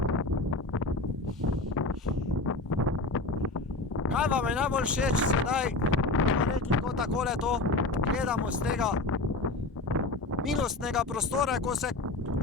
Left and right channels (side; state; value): right; quieter; 3.1 dB